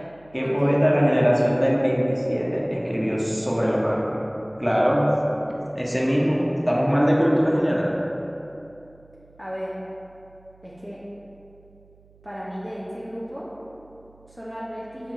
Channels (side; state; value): right; noise; hum, 28 dB below the sound